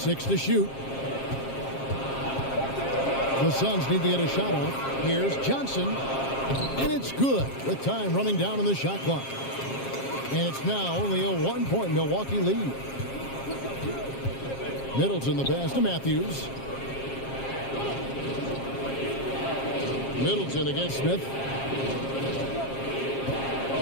to shoot. The Suns need to get a shot off. Here's Johnson. And it's good with time running down on the shot clock. And it's now only a 1-point Milwaukee lead. Middleton the pass to Matthews. Middleton against Smith.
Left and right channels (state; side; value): late; right; 7.4 ms